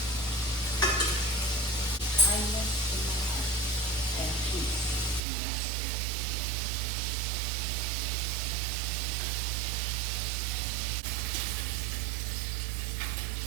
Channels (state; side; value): drops out; left; at 5.2 s